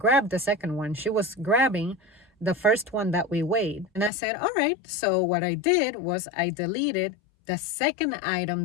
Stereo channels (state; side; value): drops out; right; at 4.1 s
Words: the second one. She was grabbing the first one that we weighed. And I said, all right. So what I did was I deleted the second